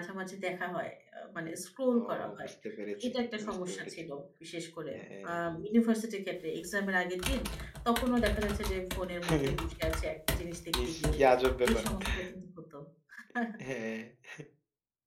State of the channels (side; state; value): both; identical; correlation 1.00